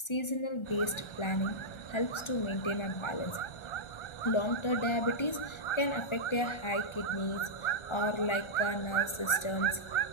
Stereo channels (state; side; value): late; right; 1.4 ms